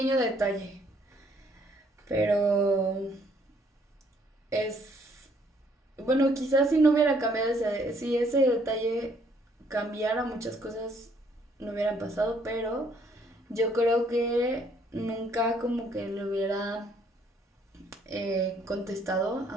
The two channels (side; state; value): both; normal; correlation 0.66